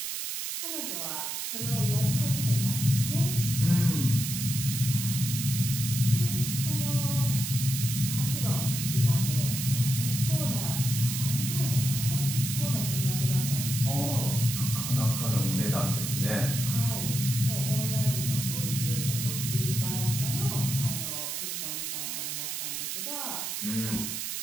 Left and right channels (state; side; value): noise; right; hiss, 3 dB below the sound